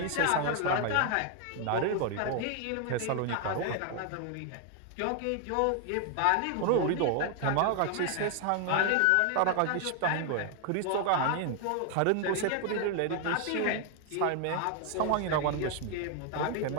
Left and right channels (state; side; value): different; both; correlation 0.00